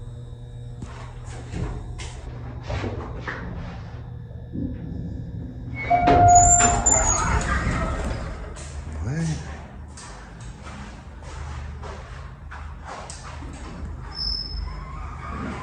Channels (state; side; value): identical; both; correlation 1.00